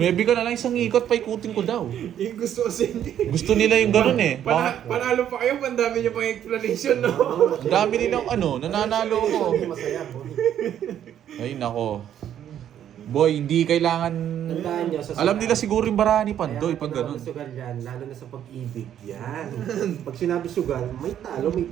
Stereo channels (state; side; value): quieter; left; 10.3 dB